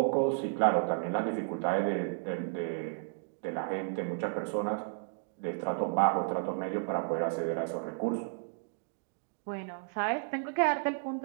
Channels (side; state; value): left; silent; digital silence